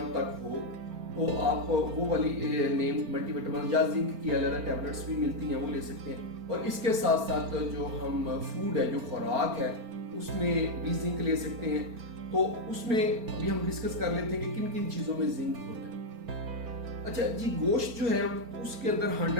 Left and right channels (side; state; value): left; late; 4.4 ms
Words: तक हो, तो आप वो वाली नेम मल्टीविटामिन या जिंक की अलग टैबलेट्स भी मिलती हैं, वो ले सकते हैं। और इसके साथ साथ जो हम फूड है, जो खुराक है, उसमें भी जिंक ले सकते हैं। तो उसमें अभी हम डिस्कस कर लेते हैं कि किन किन चीज़ों में जिंक होता है। अच्छा जी, गोश्त जो है उसके अंदर